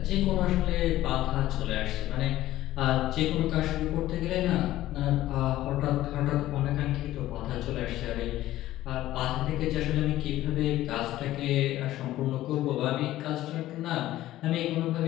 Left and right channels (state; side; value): quieter; right; 14.9 dB